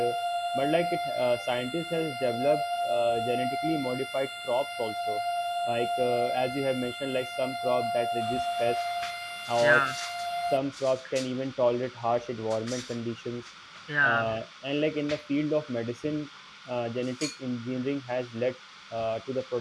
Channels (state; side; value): identical; both; correlation 1.00